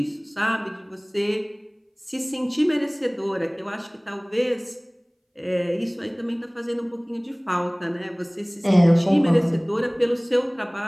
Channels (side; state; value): both; identical; correlation 1.00